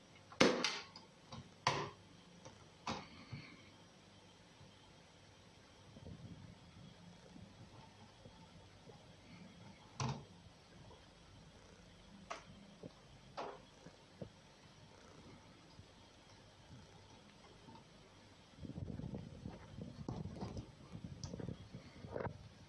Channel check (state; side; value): identical; both; correlation 1.00